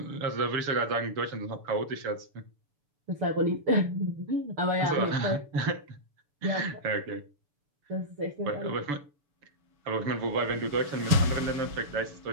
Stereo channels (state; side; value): late; left; 6.9 ms